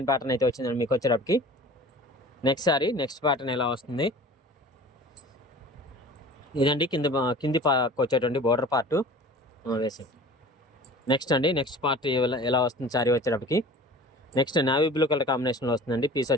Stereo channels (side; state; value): both; normal; correlation 0.42